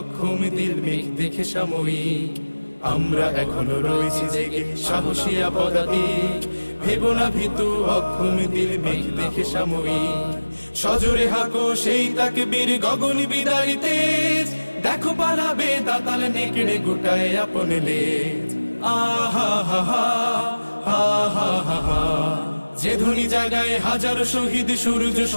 দিল মেঘ দেখে সাময়িক। আমরা এখনো রয়েছি জেগে সাহসিয়া পদাতিক, ভেবো না ভীতু অক্ষম দিল মেঘ দেখে সাময়িক। সজোরে হাঁকো সেই তাকবীর গগন বিদারী তেজ, দেখো পালাবে দাতাল নেকড়ে গোটায় আপন লেজ। আহা হা হা, হা হা হা হা। যে ধ্বনি জাগায় হাজার শহীদ সূর্য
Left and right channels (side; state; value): both; inverted; correlation -1.00